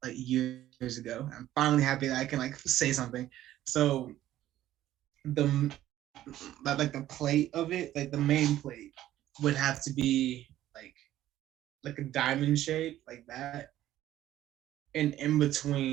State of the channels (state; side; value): quieter; left; 13.4 dB